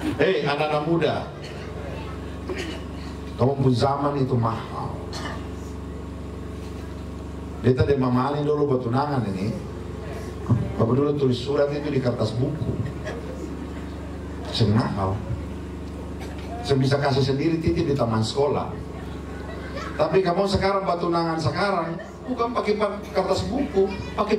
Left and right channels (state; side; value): identical; both; correlation 1.00